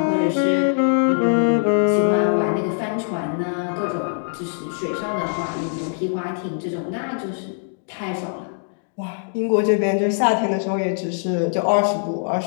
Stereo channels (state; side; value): silent; right; digital silence